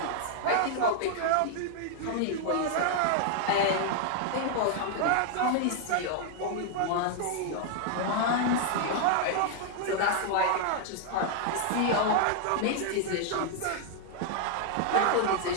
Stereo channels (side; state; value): both; different; correlation 0.00